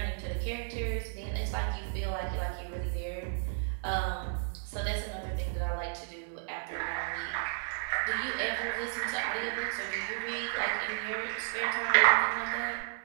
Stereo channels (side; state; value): left; silent; digital silence